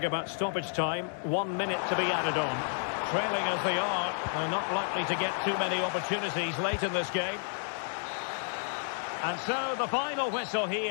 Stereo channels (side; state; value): right; silent; 57 dB below the other